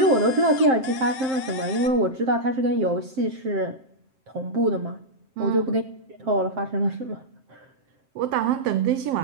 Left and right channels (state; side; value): late; left; 7.6 ms